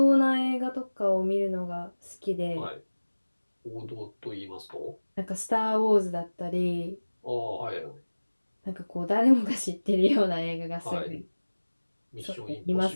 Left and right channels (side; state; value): both; inverted; correlation -1.00